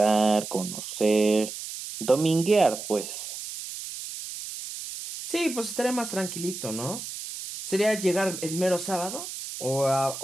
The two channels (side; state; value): right; noise; hiss, 9 dB below the sound